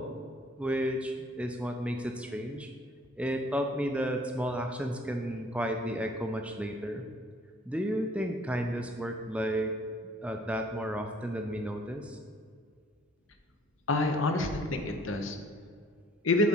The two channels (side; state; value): both; normal; correlation 0.57